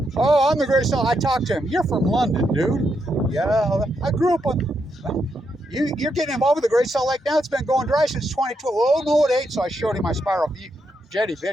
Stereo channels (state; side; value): normal; both; correlation 0.81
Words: I'm the greatest. I talked to him. You're from London, dude. Yeah, I grew up on. You're getting involved with the Great Salt Lake now. It's been going dry since 2012. Oh no, it ain't. So I showed him my spiral jetty